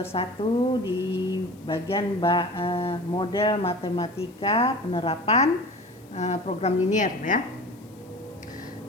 1 di bagian model matematika penerapan program linier ya.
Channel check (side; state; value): left; noise; hiss, 28 dB below the sound